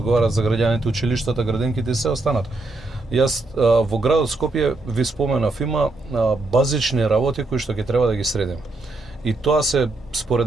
за граѓаните, училиштата, градинките и се останат. Јас во градот Скопје ви споменав, има базични работи кои што ќе треба да ги средиме. И тоа се, според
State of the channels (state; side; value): quieter; left; 3.1 dB